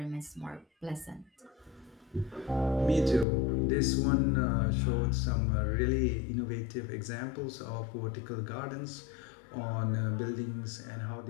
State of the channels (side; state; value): right; drops out; at 3.2 s